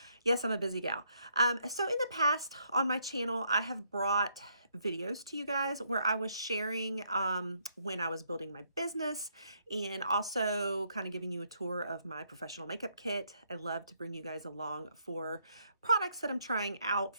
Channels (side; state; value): both; inverted; correlation -0.73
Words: Yes, I'm a busy gal. So in the past on my channel, I have brought videos to you guys where I was sharing when I was building my business and also kind of giving you a tour of my professional makeup kit. I love to bring you guys along for products that I'm trying out